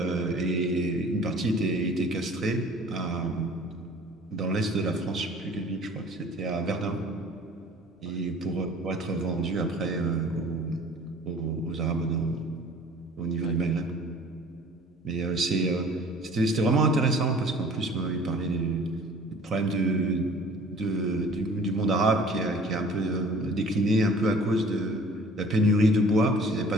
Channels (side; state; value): both; normal; correlation 0.49